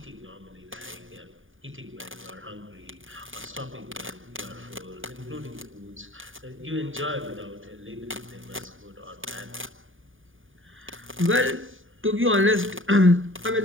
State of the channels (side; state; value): left; late; 0.58 ms